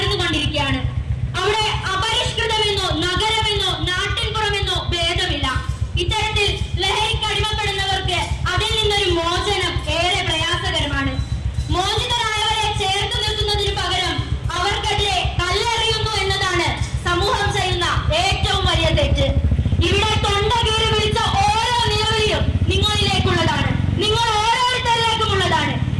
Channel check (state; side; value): identical; both; correlation 1.00